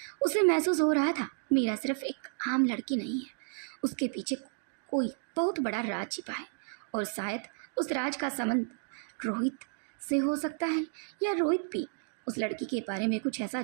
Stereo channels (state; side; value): silent; left; 56 dB below the other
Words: उसे महसूस हो रहा था मीरा सिर्फ एक आम लड़की नहीं है, उसके पीछे कोई बहुत बड़ा राज छिपा है। और शायद उस राज का संबंध रोहित से हो सकता है, या रोहित भी उस लड़की के बारे में कुछ ऐसा